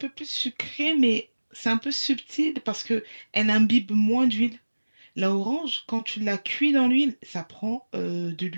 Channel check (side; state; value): both; inverted; correlation -1.00